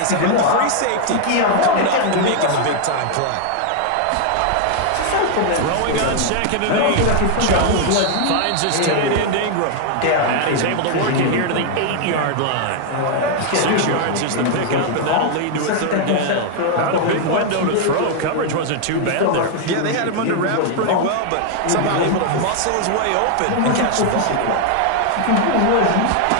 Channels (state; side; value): different; both; correlation 0.00